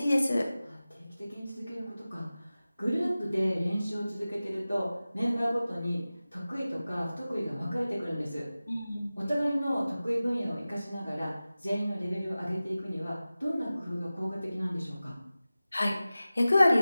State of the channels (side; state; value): both; inverted; correlation -0.96